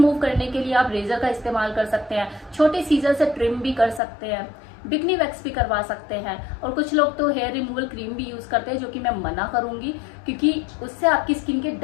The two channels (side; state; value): right; drops out; at 4.0 s